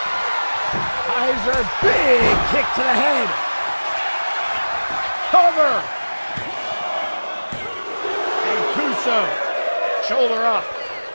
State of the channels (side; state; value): both; inverted; correlation -1.00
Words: Kaiser, big kick to the head. Cover. Shoulder up.